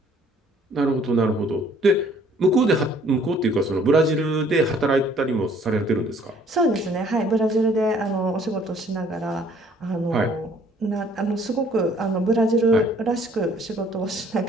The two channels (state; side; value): normal; both; correlation 0.59